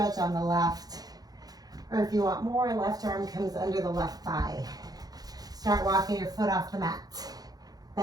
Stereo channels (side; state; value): left; late; 0.19 ms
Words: on the left. Or if you want more, left arm comes under the left thigh. Start walking your foot off the mat.